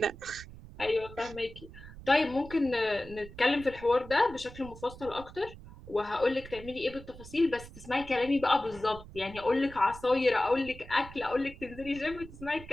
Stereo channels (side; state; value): right; noise; rumble, 16 dB below the sound